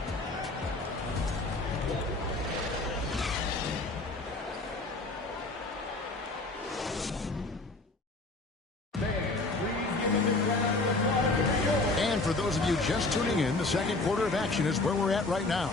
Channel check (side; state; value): right; quieter; 3.2 dB